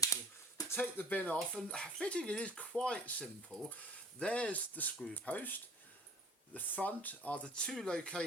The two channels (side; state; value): both; normal; correlation 0.49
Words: shall take the bin off, and fitting it is quite simple. There's the screw post. The front are the 2